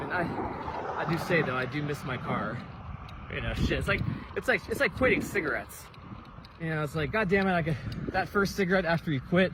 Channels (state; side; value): identical; both; correlation 1.00